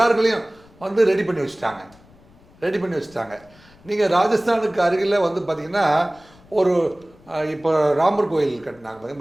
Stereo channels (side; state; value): left; noise; rumble, 27 dB below the sound